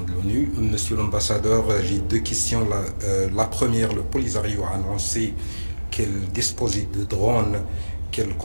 de l'ONU. Monsieur l'ambassadeur, j'ai deux questions. La première, le Polisario a annoncé qu'elle disposait de drones qu'elle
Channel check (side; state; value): both; inverted; correlation -1.00